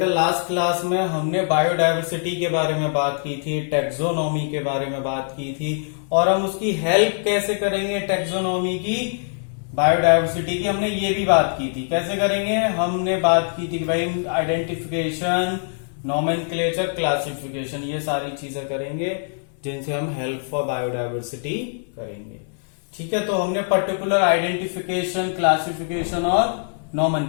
लास्ट क्लास में हमने बायोडायवर्सिटी के बारे में बात की थी, टैक्सोनॉमी के बारे में बात की थी और हम उसकी हेल्प कैसे करेंगे टैक्सोनॉमी की, बायोडायवर्सिटी की हमने ये भी बात की थी। कैसे करेंगे, हमने बात की थी कि भाई आइडेंटिफिकेशन, नोमेनक्लेचर, क्लासिफिकेशन, ये सारी चीजें करेंगे जिनसे हम हेल्प फॉर बायोडायवर्सिटी करेंगे। ठीक है, तो हमने पर्टिकुलर आइडेंटिफिकेशन, क्लासिफिकेशन और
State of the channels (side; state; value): right; silent; 64 dB below the other